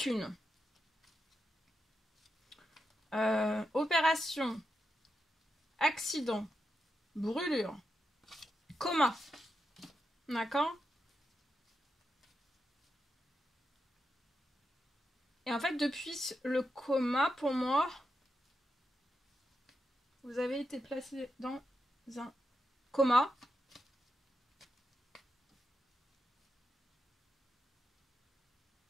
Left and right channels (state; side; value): normal; both; correlation 0.86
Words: Opération, accident, brûlure, coma. D'accord? Et en fait, depuis le coma, pour moi, vous avez été placé dans un coma.